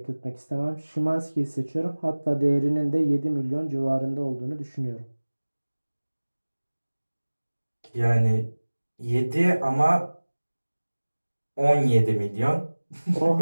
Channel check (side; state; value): both; inverted; correlation -1.00